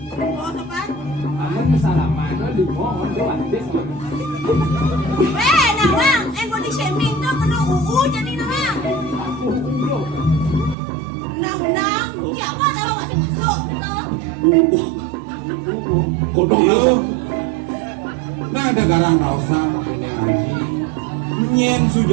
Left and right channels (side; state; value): left; drops out; at 10.8 s